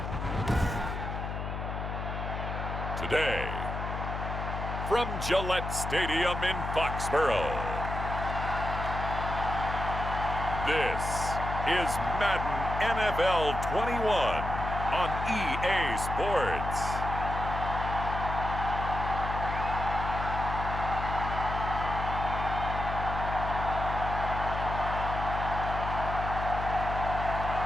Today, from Gillette Stadium in Foxborough, this is Madden NFL 21 on EA Sports.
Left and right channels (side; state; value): left; noise; hum, 5 dB below the sound